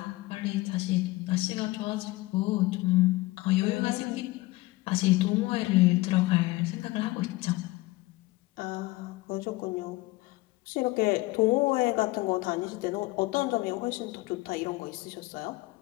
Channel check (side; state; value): right; quieter; 20.4 dB